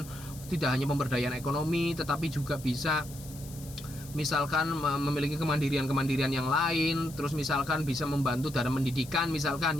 tidak hanya pemberdayaan ekonomi tetapi juga bisa misalkan memiliki kemandirian yang lain, terus misalkan bisa membantu dalam pendidikan, misalkan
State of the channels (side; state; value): left; noise; hiss, 17 dB below the sound